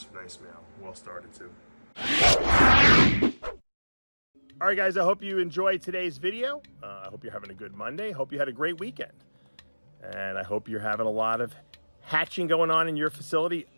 male, well started too. All right, guys, I hope you enjoyed today's video. I hope you're having a good Monday. Hope you had a great weekend, and I hope you're having a lot of hatching going on in your facility.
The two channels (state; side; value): inverted; both; correlation -1.00